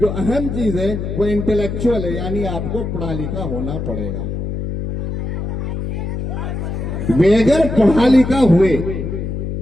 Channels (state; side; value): noise; left; hum, 4 dB below the sound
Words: जो अहम चीज है, वो इंटेलेक्चुअल है, यानी आपको पढ़ा लिखा होना पड़ेगा। बेगर पढ़ा लिखा हुए,